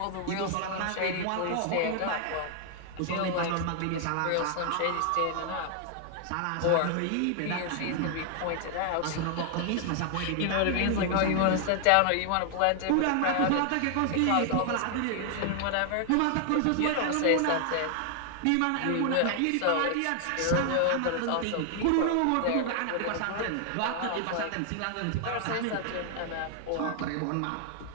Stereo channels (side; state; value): both; different; correlation 0.00